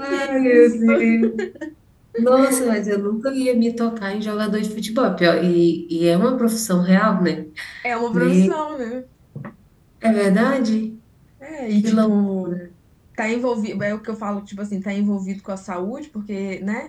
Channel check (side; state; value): both; identical; correlation 1.00